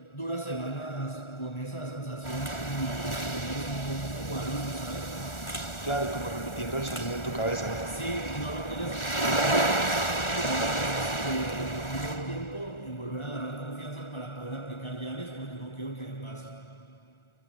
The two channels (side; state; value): right; late; 1.4 ms